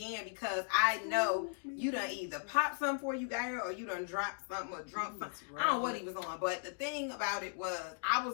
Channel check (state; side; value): silent; right; digital silence